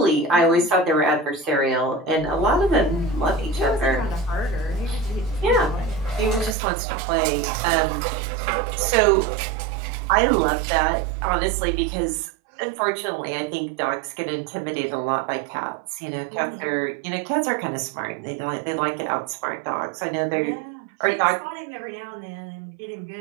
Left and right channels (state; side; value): drops out; left; at 6.6 s